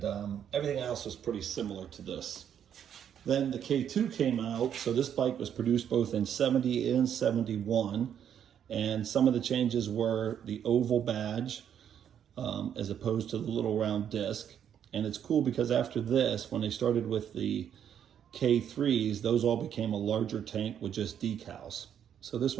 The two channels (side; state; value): left; quieter; 9.1 dB